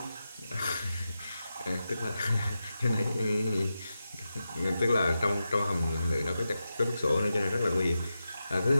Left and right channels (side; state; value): both; inverted; correlation -0.90